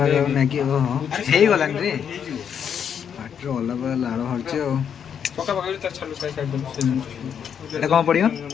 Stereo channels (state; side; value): quieter; right; 8.0 dB